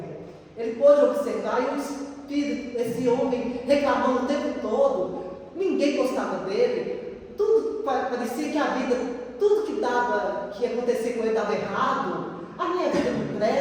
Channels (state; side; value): identical; both; correlation 1.00